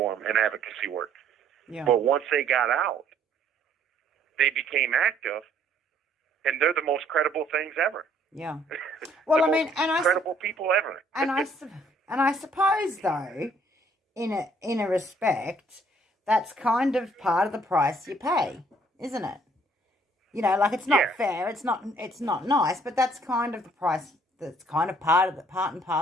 and advocacy work. Yeah. But once they got out, they became active, and they're the most credible things ever. Yeah. Well, I mean, credible people ever. and I suppose though, in a respect, that's kind of part of the price you pay, isn't it? Like it's not fair, it's not nice, but that's kind of the price. That's kind of part and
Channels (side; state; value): both; normal; correlation 0.62